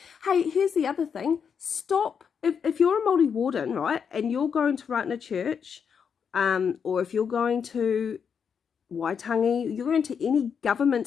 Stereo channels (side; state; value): right; quieter; 6.9 dB